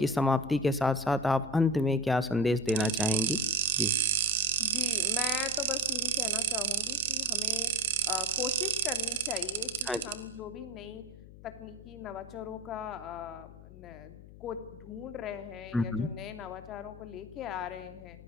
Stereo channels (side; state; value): left; noise; hum, 17 dB below the sound